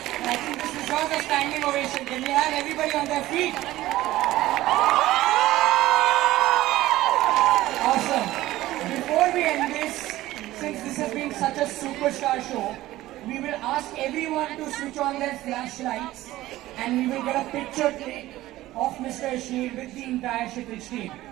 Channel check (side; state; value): left; quieter; 16.1 dB